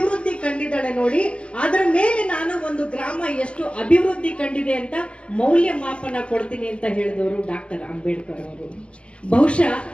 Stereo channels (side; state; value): right; late; 0.058 ms